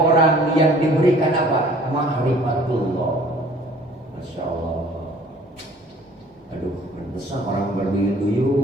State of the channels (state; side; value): normal; both; correlation 0.53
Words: yang diberikan apa? Ma'rifatullah. Masya Allah. Aduh, besar orang